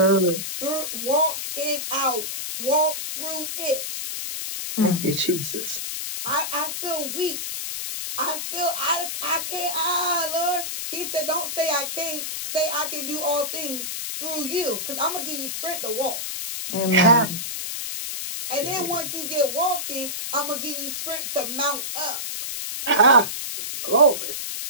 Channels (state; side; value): noise; left; hiss, 4 dB below the sound